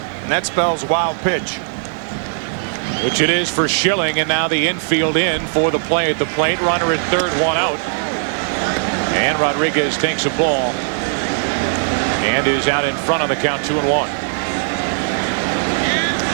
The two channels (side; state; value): left; silent; digital silence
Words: and that spells wild pitch. Which it is for Schilling, and now the infield in for the play at the plate. Runner at third, one out. And Rodriguez takes a ball and is out in front on the count, 2-1.